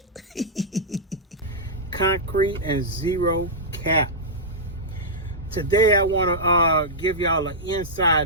Concrete and zero cap. Today I want to give y'all an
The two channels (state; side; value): normal; both; correlation -0.11